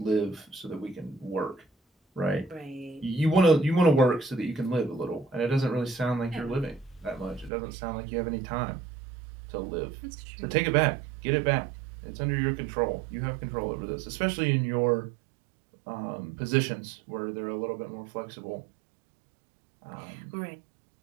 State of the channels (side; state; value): left; drops out; at 7.5 s